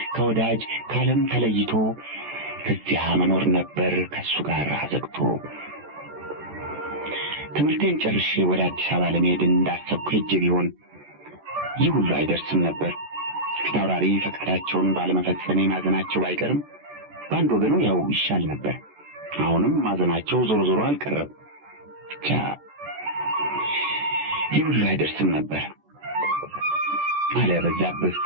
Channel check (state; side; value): late; left; 14 ms